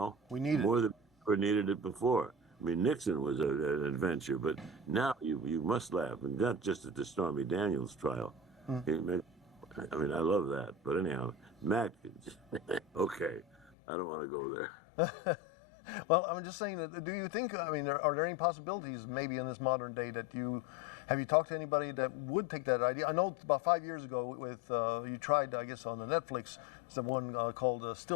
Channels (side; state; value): right; drops out; at 13.7 s